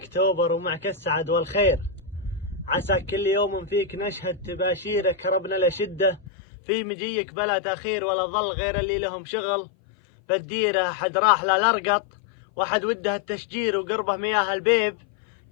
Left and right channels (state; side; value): drops out; right; at 6.2 s